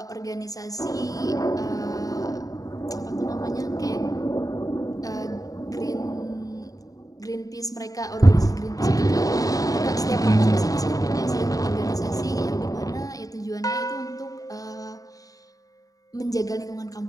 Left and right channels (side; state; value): right; late; 0.17 ms